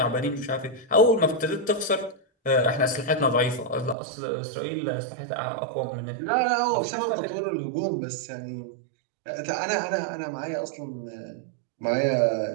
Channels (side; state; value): left; drops out; at 4.0 s